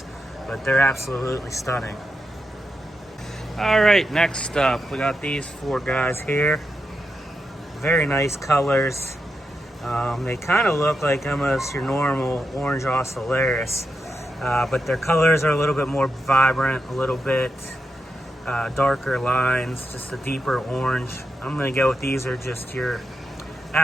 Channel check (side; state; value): both; normal; correlation 0.87